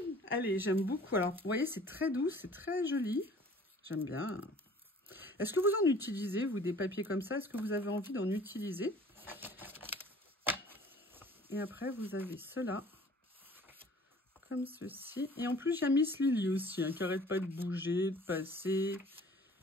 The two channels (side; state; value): both; normal; correlation 0.50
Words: Allez, j'aime beaucoup. Alors, vous voyez, c'est très doux, c'est très joli. J'aime bien. Est-ce que vous en utilisez, vous, des papiers comme ça? Est-ce que vous avez envie d'en utiliser? Et après, vous avez cela, comme ceci. Et en plus, il y a Miss Lily aussi, hein, qui n'arrête pas de bouger, de passer.